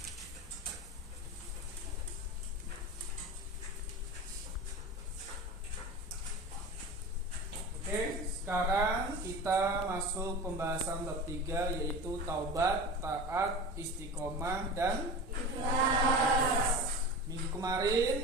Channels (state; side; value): normal; both; correlation 0.31